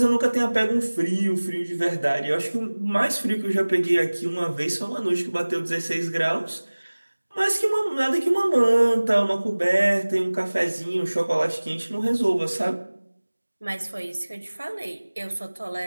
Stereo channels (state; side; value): inverted; both; correlation -1.00